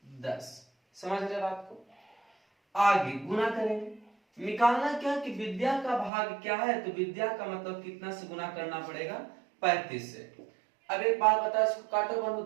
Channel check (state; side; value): drops out; left; at 6.1 s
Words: 10। समझ रहे बात को। आगे गुना करेंगे, निकालना क्या कि विद्या का भाग क्या है, तो विद्या का मतलब कितना से गुना करना पड़ेगा, 35 से। अब एक बात बताओ, इसको काटो बंधु,